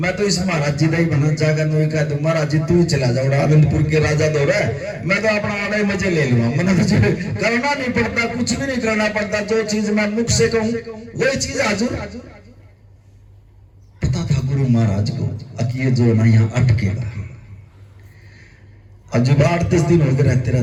तो इस महाराज जी का ही बना जाएगा, नहीं कह दूं महाराज जी तू चला जाओ, आनंदपुर के राजा दो रहा है, मैं तो अपना आधा ही मजे ले लूंगा, मैंने तो करना नहीं पड़ता, कुछ भी नहीं करना पड़ता, जो चीज मैं मुख से कहूं वही चीज हाजिर। पता था गुरु महाराज को कि ये जो ना यहाँ अटकेगा। अब जब 8-10 दिन हो गए रहते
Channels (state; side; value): identical; both; correlation 1.00